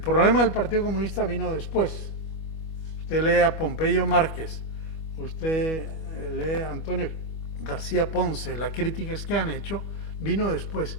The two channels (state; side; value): late; right; 25 ms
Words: del Partido Comunista vino después. Usted lee a Pompeyo Márquez, usted lee a Antonio García Ponce, las críticas que han hecho, vino después.